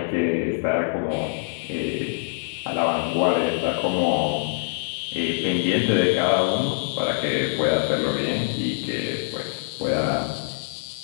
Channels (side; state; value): right; silent; 62 dB below the other